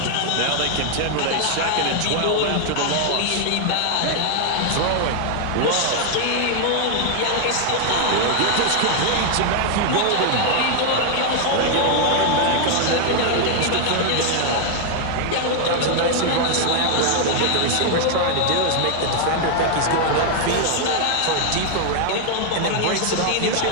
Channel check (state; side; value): different; both; correlation 0.00